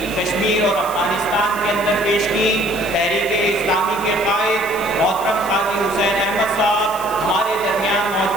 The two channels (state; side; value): noise; left; hiss, 14 dB below the sound